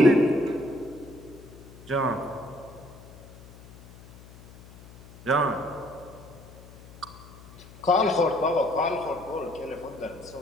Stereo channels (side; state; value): left; noise; hum, 20 dB below the sound